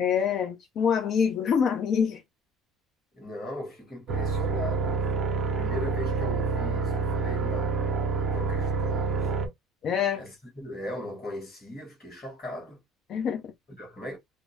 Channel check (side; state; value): both; normal; correlation 0.44